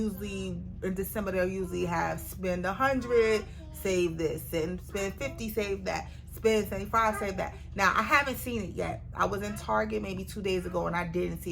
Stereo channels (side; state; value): both; identical; correlation 1.00